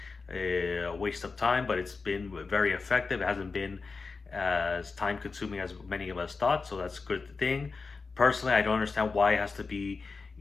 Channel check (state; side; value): quieter; right; 4.4 dB